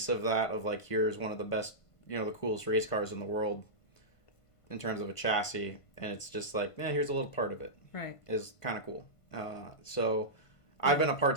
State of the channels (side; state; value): right; late; 1.5 ms